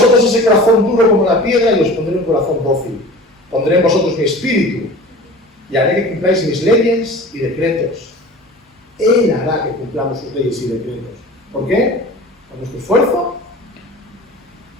ese corazón duro como la piedra y os pondré un corazón dócil. Pondré en vosotros mi espíritu y haré que cumpláis mis leyes y decretos. Él hará que cumplamos sus leyes y decretos. ¿Por qué? Con nuestro esfuerzo,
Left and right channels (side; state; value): both; normal; correlation 0.40